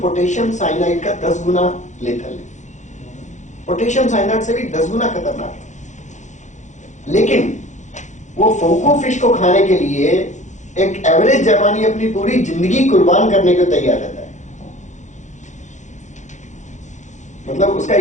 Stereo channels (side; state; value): right; late; 0.35 ms